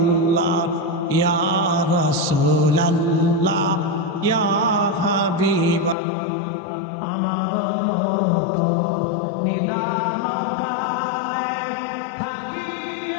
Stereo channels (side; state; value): right; drops out; at 6.0 s